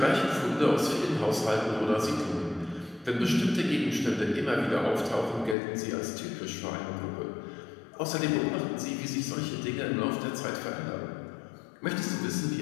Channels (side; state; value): right; drops out; at 5.6 s